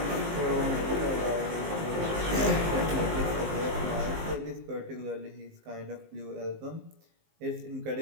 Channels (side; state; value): left; late; 19 ms